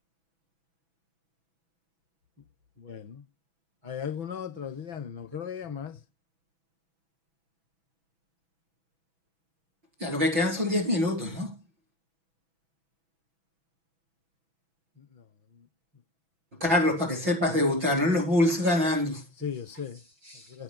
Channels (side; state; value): left; late; 6.1 ms